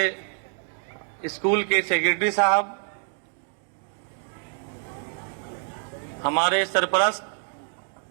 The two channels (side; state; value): left; silent; 56 dB below the other